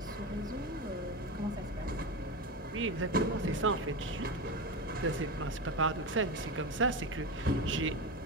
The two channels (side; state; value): both; normal; correlation 0.20